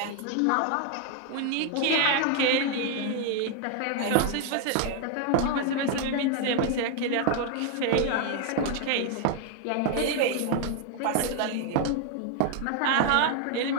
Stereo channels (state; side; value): different; both; correlation 0.01